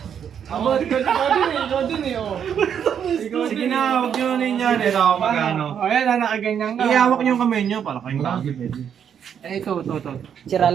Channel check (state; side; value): quieter; left; 8.3 dB